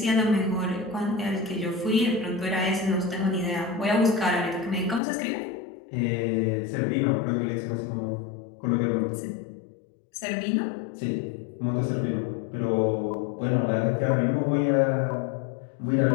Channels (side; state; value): right; drops out; at 5.0 s